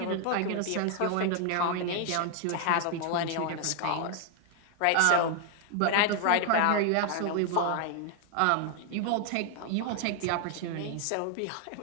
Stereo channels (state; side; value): different; both; correlation 0.00